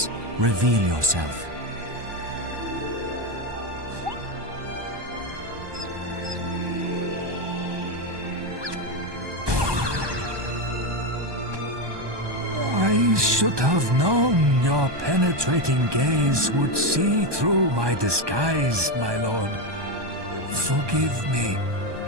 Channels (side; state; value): left; late; 1.2 ms